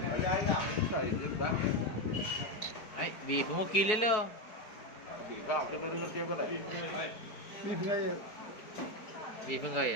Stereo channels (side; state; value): right; late; 4.7 ms